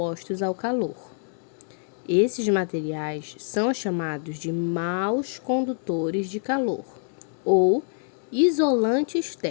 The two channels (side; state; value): right; silent; 61 dB below the other